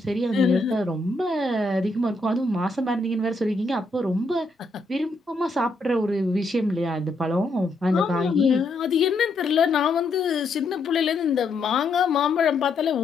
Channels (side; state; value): right; quieter; 3.1 dB